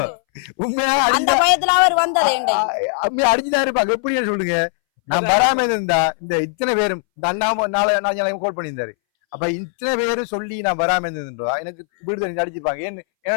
உண்மையா அடிச்சுதான் இருப்பாங்க. எப்படின்னு சொல்லுங்க. நான் வராம இருந்தா இந்த இத்தனை பேரும் இந்த அண்ணா நாளை கால் பண்ணியிருந்தாரு. அப்ப இத்தனை பேரும் சொல்லி நான் வராம இருந்திருந்தா எனக்கு வீடு அடிச்சிருப்பாங்க. என்ன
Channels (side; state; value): right; silent; 63 dB below the other